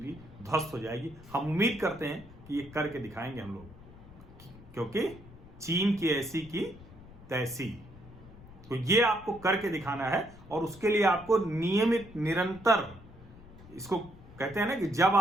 ध्वस्त हो जाएगी। हम उम्मीद करते हैं कि ये करके दिखाएंगे हम लोग, क्योंकि चीन की ऐसी की तैसी। तो ये आपको करके दिखाना है, और उसके लिए आपको नियमित, निरंतर, इसको कहते हैं ना कि जब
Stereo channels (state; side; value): noise; left; rumble, 19 dB below the sound